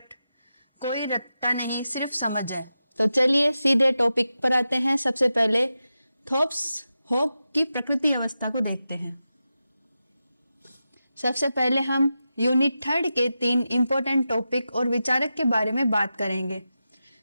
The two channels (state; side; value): inverted; both; correlation -0.91